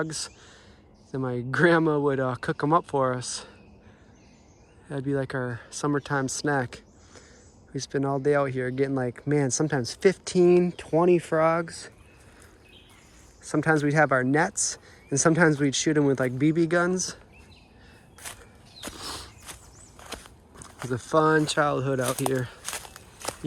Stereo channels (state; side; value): identical; both; correlation 1.00